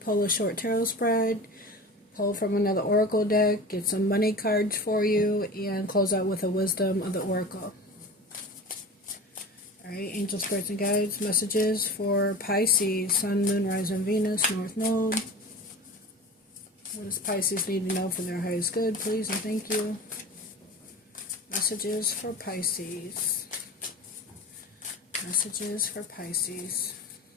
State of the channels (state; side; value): normal; both; correlation 0.34